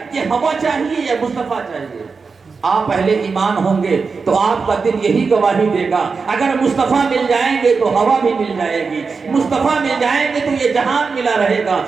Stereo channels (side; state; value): left; quieter; 4.9 dB